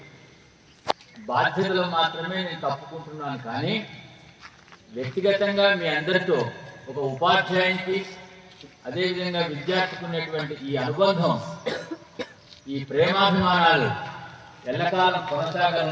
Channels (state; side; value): identical; both; correlation 1.00